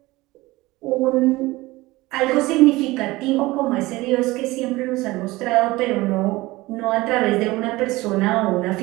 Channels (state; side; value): quieter; left; 20.1 dB